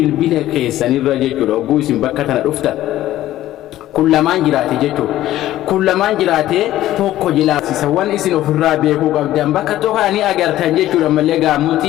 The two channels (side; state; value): right; quieter; 14.1 dB